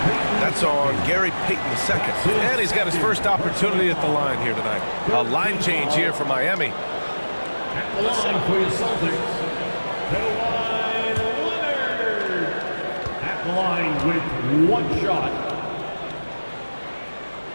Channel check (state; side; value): inverted; both; correlation -1.00